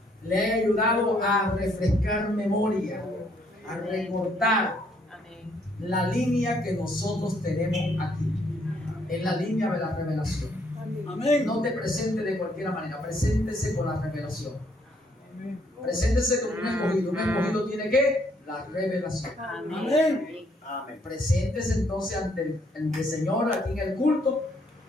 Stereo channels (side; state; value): both; normal; correlation 0.69